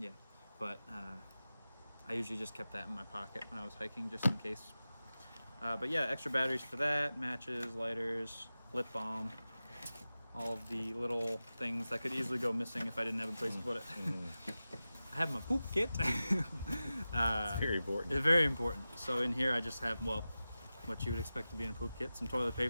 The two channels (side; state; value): both; inverted; correlation -0.95